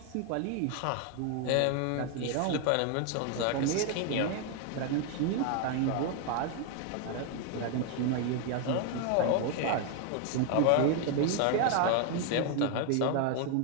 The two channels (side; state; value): both; different; correlation 0.01